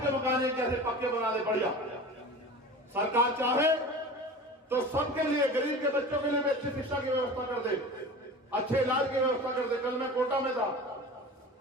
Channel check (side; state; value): both; normal; correlation 0.35